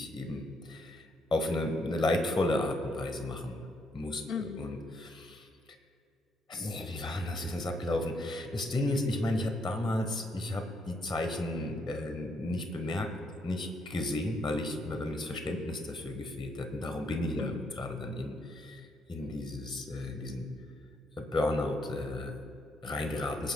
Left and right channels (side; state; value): both; normal; correlation 0.74